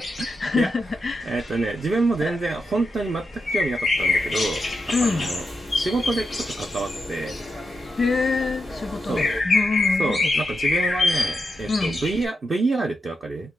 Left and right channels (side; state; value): both; normal; correlation 0.86